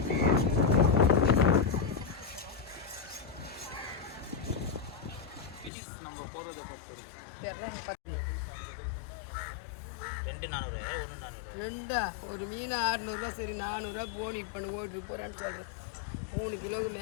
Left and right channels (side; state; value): right; drops out; at 5.7 s